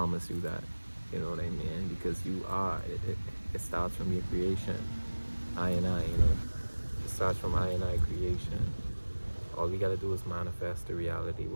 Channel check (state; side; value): inverted; both; correlation -1.00